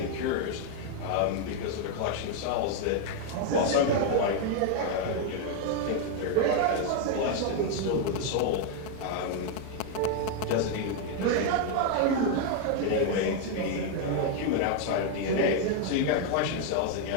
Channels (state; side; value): different; both; correlation 0.01